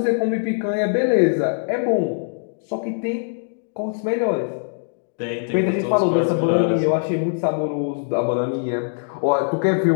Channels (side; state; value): right; silent; digital silence